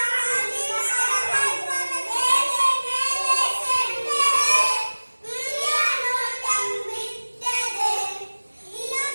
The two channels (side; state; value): both; inverted; correlation -1.00